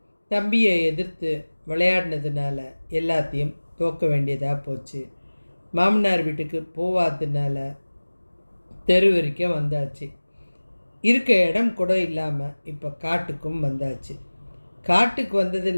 தம்பியை எதிர்த்து விளையாடினதுனால எல்லாத்தையும் தோக்க வேண்டியதாக போச்சு. மாமனார் வீட்டுக்கு போவாததுனால தெரு வரைக்கும் வந்தாச்சு. இருக்க இடம் கூட இல்லாமல் இப்போ காட்டுக்கும் வந்தாச்சு. காட்டுக்கு வந்தது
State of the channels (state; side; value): inverted; both; correlation -1.00